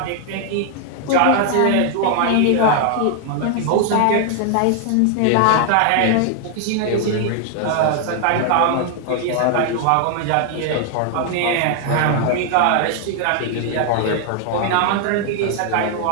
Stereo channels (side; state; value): both; different; correlation 0.00